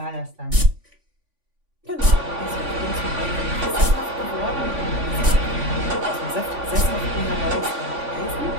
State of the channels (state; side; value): late; left; 3.5 ms